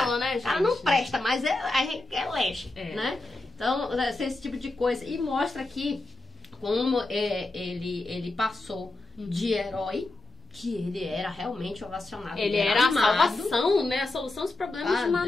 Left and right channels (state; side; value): quieter; right; 3.0 dB